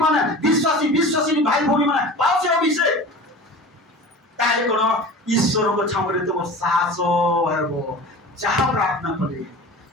মানে বিশ্বাসী ভাই ভৌণী মানে পাও সে অভিষেক তাহলে কোন ঈশ্বরଙ୍କ ଛାମରେ ତୁମ ସାହସ ହେବ ଯାହା ପ୍ରାର୍ଥନା କଲେ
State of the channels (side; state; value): both; normal; correlation 0.37